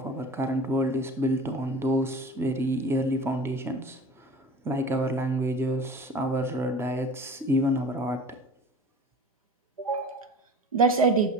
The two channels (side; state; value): both; normal; correlation 0.39